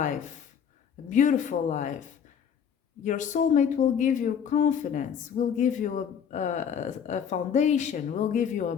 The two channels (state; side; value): quieter; right; 7.8 dB